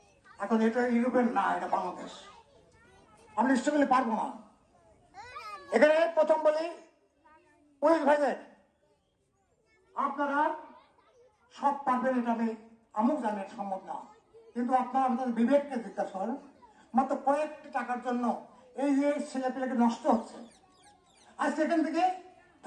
এখন এটা ইউরোপের না, এটা বাংলাদেশ। আমি নিশ্চয় বলে পারবো না। এখানে প্রথম বলি পুলিশ ভাইদের, আপনারা সব পারবেন এটা আমিও জানি এটা সম্ভব না, কিন্তু আপনারা আপনাদের বিবেককে জিজ্ঞাসা করেন। মাত্র কয়েকটি টাকার জন্য এই যে ছেলেপেলেকে নষ্ট হচ্ছে। আর সেখান থেকে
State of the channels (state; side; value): identical; both; correlation 1.00